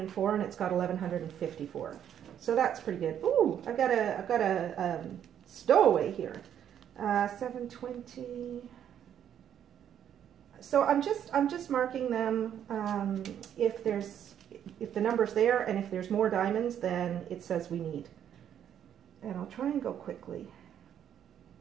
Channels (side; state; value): left; quieter; 9.7 dB